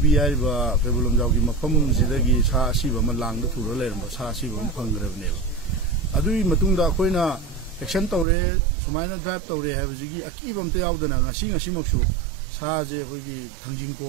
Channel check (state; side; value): drops out; left; at 8.2 s